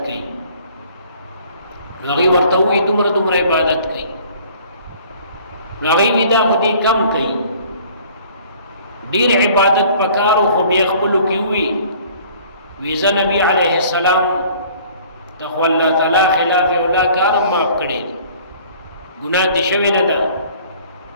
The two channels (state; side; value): inverted; both; correlation -0.53